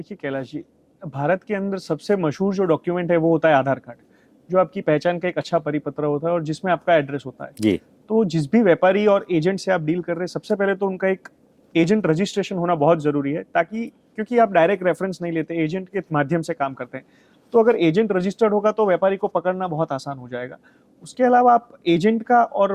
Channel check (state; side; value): identical; both; correlation 1.00